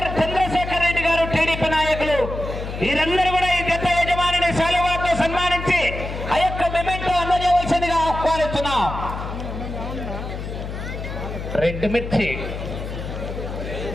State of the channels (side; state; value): left; noise; hum, 7 dB below the sound